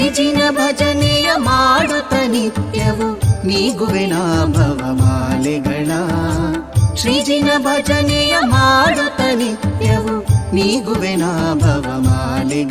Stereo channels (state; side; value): identical; both; correlation 1.00